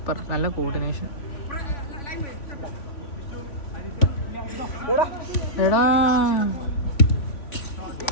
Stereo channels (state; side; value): late; right; 3.5 ms